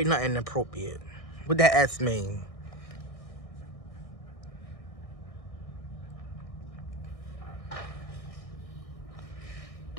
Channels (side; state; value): right; late; 1.6 ms